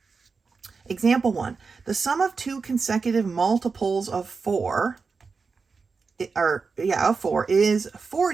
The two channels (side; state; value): left; quieter; 4.8 dB